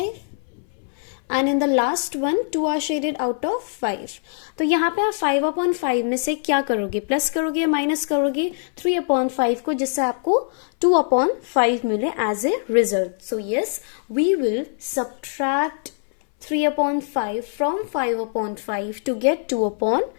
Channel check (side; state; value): right; silent; 60 dB below the other